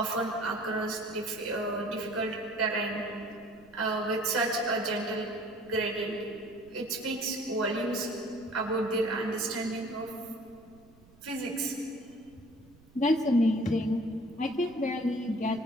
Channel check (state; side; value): noise; right; rumble, 26 dB below the sound